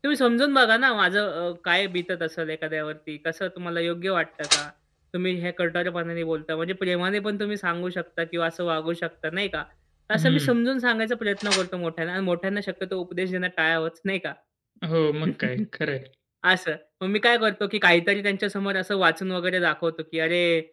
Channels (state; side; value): identical; both; correlation 1.00